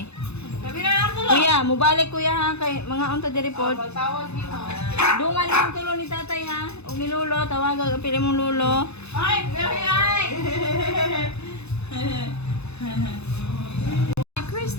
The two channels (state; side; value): late; right; 0.80 ms